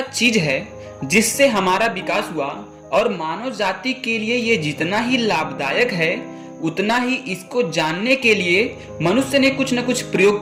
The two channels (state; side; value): identical; both; correlation 1.00